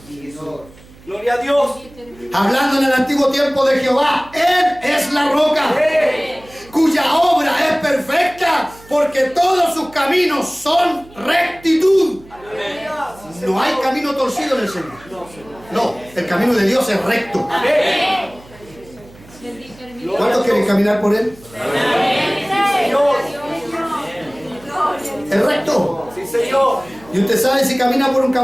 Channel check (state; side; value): noise; right; hum, 23 dB below the sound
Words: Gloria a Dios. Hablando en el antiguo tiempo de Jehová, Él es la roca, cuya obra es perfecta, porque todos sus caminos son rectitud. No hay camino torcido en el Señor. No, el camino de Dios es recto. ¿Cuántos quieren caminar por Él? Es recto. Sí, Señor. Y usted sabe, si camina por un